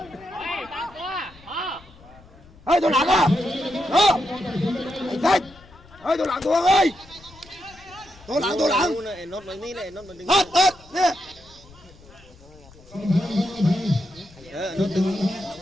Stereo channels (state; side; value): noise; left; rumble, 24 dB below the sound